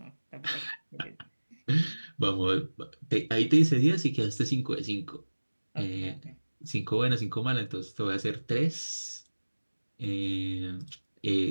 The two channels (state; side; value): inverted; both; correlation -1.00